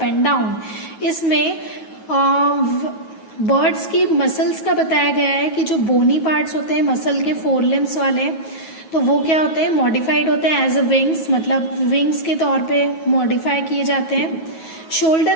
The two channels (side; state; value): right; late; 9.3 ms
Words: and down. इसमें birds की muscles का बताया गया है कि जो बोनी parts होते हैं मसल के, फोर लिम्स वाले, तो वो क्या होते हैं, मॉडिफाइड होते हैं एज अ विंग्स, मतलब विंग्स के तौर पे मॉडिफाई किए जाते हैं।